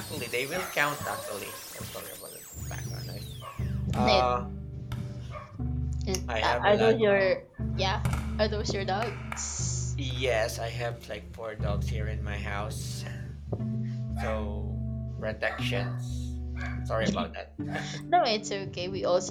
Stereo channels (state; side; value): identical; both; correlation 1.00